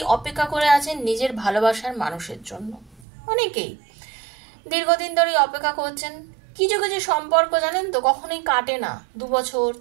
অপেক্ষা করে আছেন নিজের ভালোবাসার মানুষের জন্য, অনেকেই দীর্ঘদিন ধরে অপেক্ষা করছেন। কিছু কিছু সম্পর্ক জানেন তো কখনোই কাটে না। 2 বছর,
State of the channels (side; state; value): left; drops out; at 3.1 s